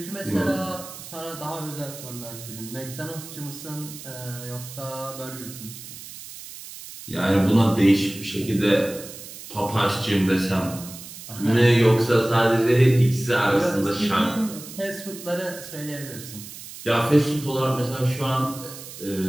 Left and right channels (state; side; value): noise; right; hiss, 14 dB below the sound